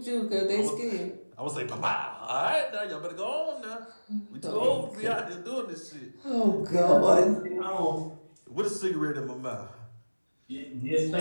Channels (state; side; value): inverted; both; correlation -1.00